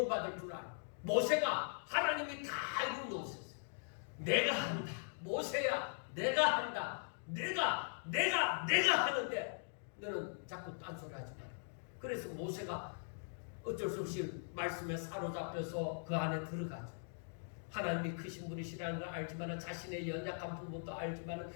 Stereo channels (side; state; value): right; silent; digital silence